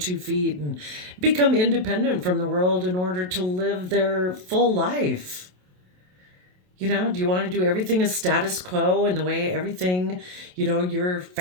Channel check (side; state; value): left; late; 27 ms